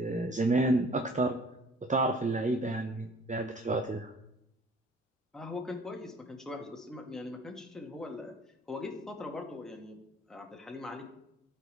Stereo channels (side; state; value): both; normal; correlation 0.53